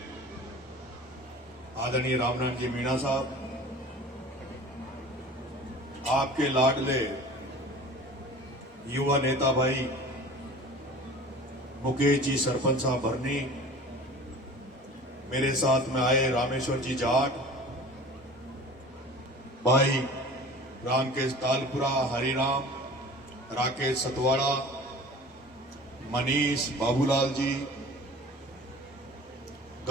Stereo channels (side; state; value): both; normal; correlation 0.41